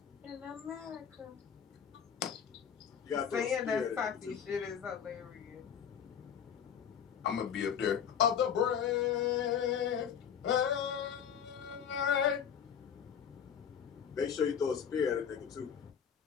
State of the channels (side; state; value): right; quieter; 8.0 dB